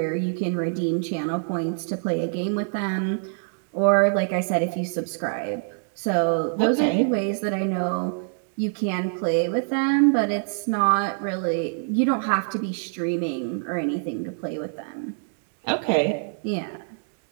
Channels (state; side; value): silent; left; 62 dB below the other